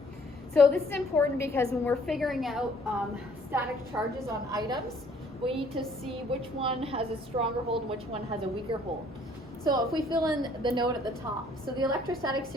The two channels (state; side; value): normal; both; correlation 0.60